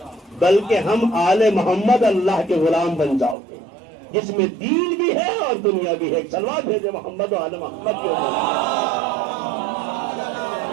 بلکہ ہم آل محمد اللہ کے غلام بن جاؤ گے، جس میں دین بھی ہے اور دنیا بھی ہے۔ صلوات بھیجے محمد و آل محمد کے اوپر۔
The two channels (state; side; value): drops out; left; at 3.4 s